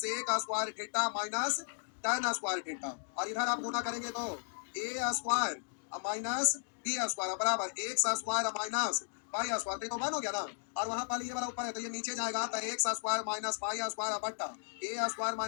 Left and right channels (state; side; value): silent; right; digital silence